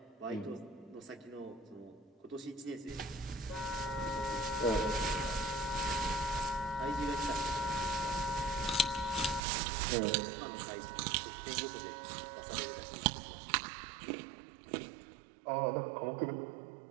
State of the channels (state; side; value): drops out; left; at 9.4 s